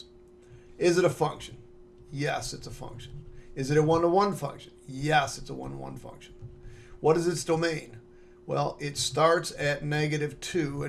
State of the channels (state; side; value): identical; both; correlation 1.00